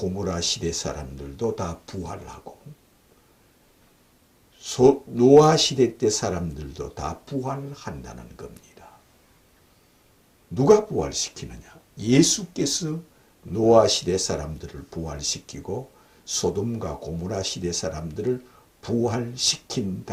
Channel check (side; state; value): both; identical; correlation 1.00